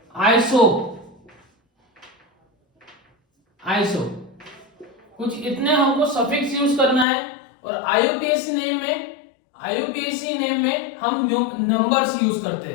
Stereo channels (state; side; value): drops out; right; at 7.1 s